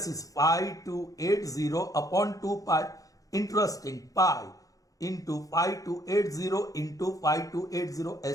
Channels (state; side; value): late; right; 0.17 ms